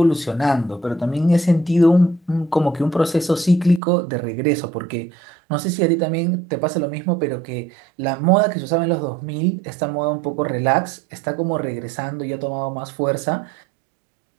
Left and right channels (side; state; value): left; drops out; at 3.8 s